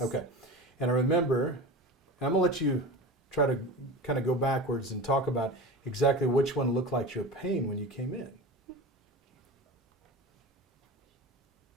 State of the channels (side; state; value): both; normal; correlation 0.31